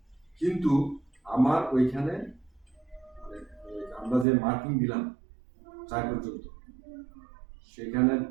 কিন্তু আমার ওইখানে আমরা যে মার্কিং দিলাম 4 পর্যন্ত, সেখানে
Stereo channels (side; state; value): left; drops out; at 4.2 s